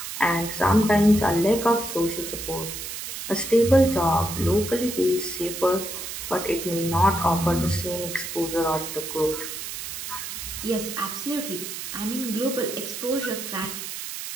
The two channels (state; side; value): noise; right; hiss, 7 dB below the sound